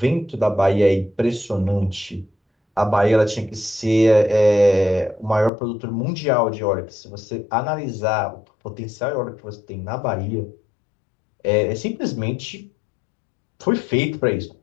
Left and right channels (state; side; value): drops out; right; at 5.5 s